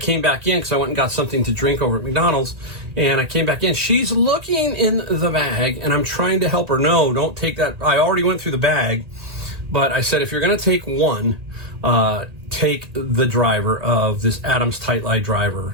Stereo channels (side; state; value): left; late; 1.8 ms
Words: back in because I went and got something to drink over at McDonald's, and I came back in. She's looking in the bag, and I'm trying to help her. No, don't take that. I already went through the bag, but I said, if you're going to take one, take the driver of this Adams Tight Light driver.